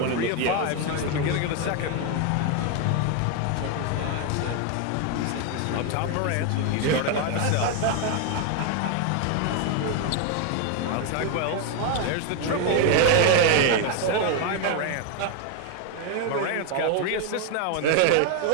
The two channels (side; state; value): both; different; correlation 0.01